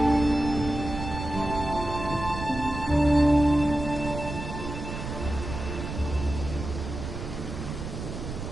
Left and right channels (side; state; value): right; noise; rumble, 7 dB below the sound